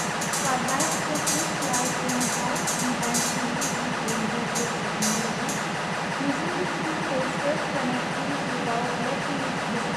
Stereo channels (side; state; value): both; identical; correlation 1.00